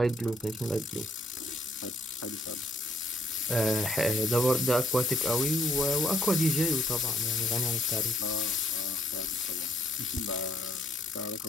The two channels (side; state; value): both; normal; correlation 0.66